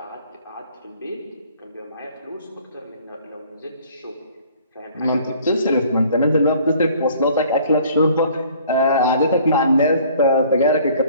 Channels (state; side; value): inverted; both; correlation -0.55